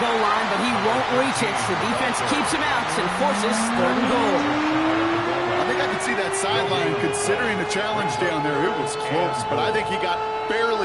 line, but he won't reach it. The defense keeps him out and forces 3rd and goal. I think I could see that sideline considering the challenge down there. It was close, but I think he got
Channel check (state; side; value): identical; both; correlation 1.00